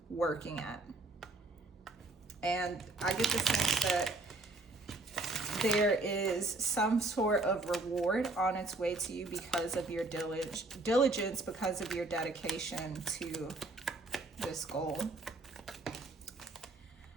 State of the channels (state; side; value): quieter; left; 3.0 dB